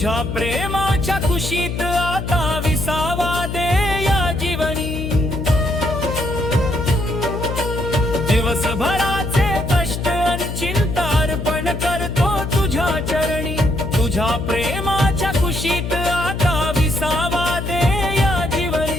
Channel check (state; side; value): noise; left; hum, 5 dB below the sound